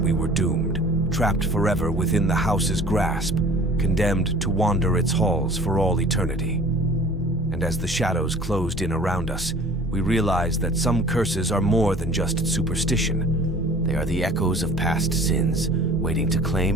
were doomed, trapped forever within the house's grasp, condemned to wander its halls for all eternity. And as the shadows closed in around us, we realized that some curses are more than just superstition. They are the echoes of past sins, waiting to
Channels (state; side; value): normal; both; correlation 0.46